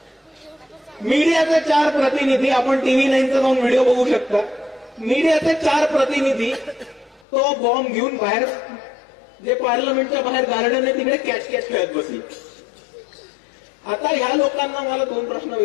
मीडियाचे 4 प्रतिनिधी, आपण TV 9चा जाऊन व्हिडिओ बघू शकता, मीडियाचे 4 प्रतिनिधी तो बॉम्ब घेऊन बाहेर, जे पार्लमेंटच्या बाहेर गार्डन आहे तिकडे कॅच खेळत बसली. आता ह्या लोकांना मला 2 प्रश्न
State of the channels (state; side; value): drops out; right; at 7.2 s